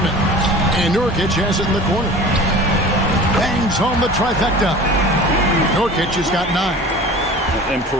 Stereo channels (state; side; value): normal; both; correlation 0.40